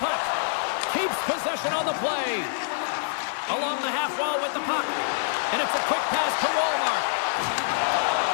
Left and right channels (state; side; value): silent; right; digital silence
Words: Keeps possession on the play. Along the half wall with the puck. And it's a quick pass to Walmart.